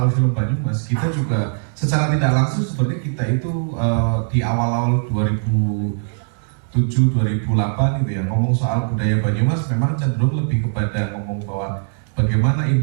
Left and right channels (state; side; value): silent; left; digital silence